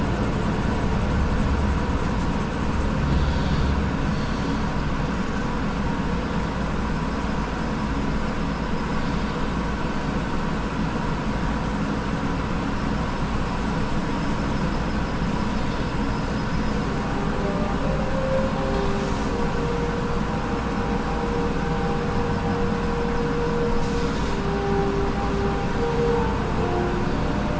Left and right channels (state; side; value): identical; both; correlation 1.00